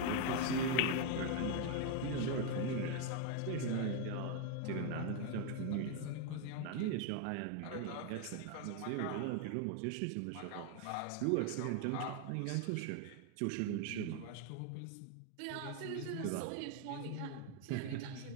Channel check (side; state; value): both; different; correlation 0.01